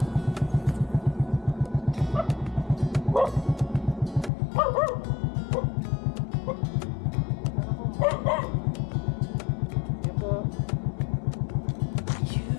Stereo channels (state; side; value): drops out; right; at 4.3 s